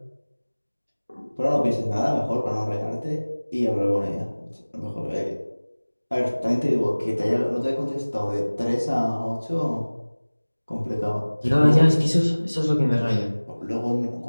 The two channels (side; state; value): both; inverted; correlation -1.00